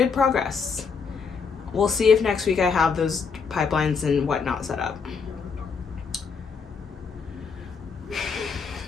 progress. We'll see if next week I have those pipelines and whatnot set up.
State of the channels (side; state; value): right; quieter; 5.6 dB